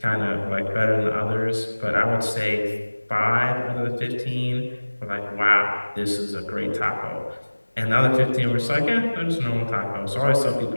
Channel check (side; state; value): both; inverted; correlation -1.00